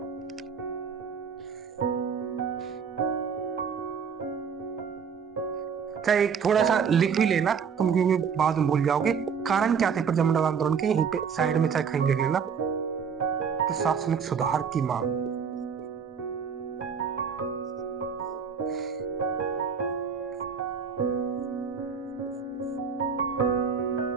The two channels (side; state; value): left; quieter; 6.5 dB